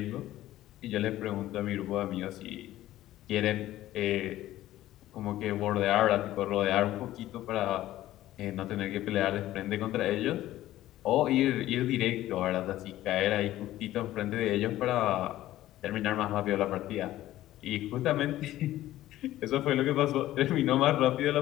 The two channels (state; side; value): quieter; right; 14.6 dB